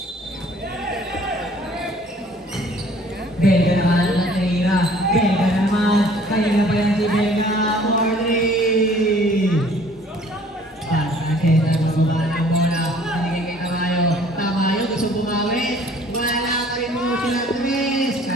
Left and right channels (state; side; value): normal; both; correlation 0.54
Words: Belga naman ang Teira. Belga naman. Kaya na pa yan si Belga. Morley! Van Sanchez ang magbaba ng bola. Binigay kay Tamayo gusto bumawi. Wala ka rin mo sila Tres.